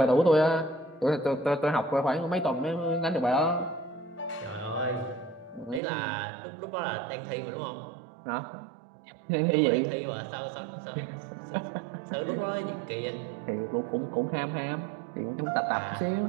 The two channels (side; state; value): left; drops out; at 5.8 s